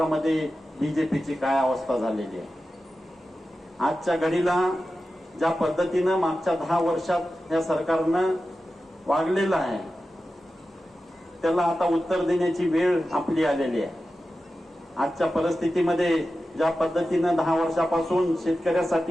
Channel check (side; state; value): both; normal; correlation 0.93